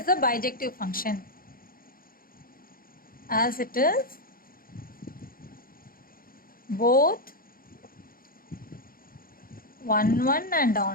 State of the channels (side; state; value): right; late; 0.42 ms